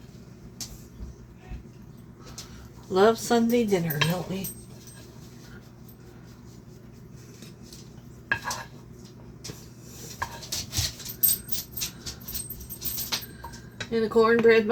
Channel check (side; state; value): both; identical; correlation 1.00